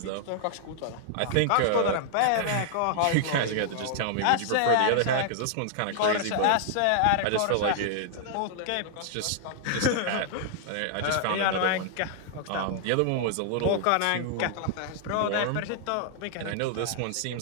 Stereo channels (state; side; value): different; both; correlation -0.01